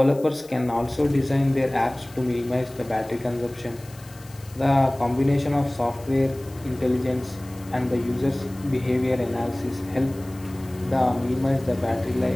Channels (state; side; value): noise; left; hiss, 22 dB below the sound